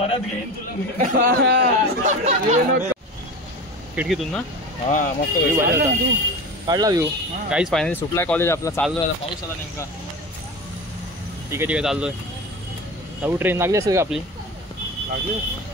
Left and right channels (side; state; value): both; normal; correlation 0.30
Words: घेईन खिडकीतून ना हा मस्त काढला व्ह्यू. काहीच फायनली सुटलाय कॉलेज आपला. चाललोय आता. पाऊस आला नेमका. ठीक आहे चाललोय. नऊ ट्रेन लागली असेल का आपली? लागली